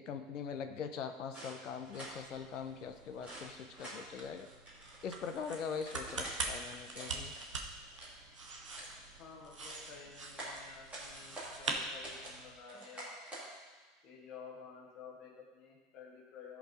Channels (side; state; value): both; normal; correlation 0.32